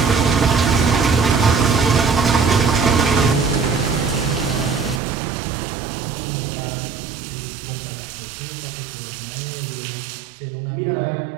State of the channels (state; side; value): drops out; left; at 5.0 s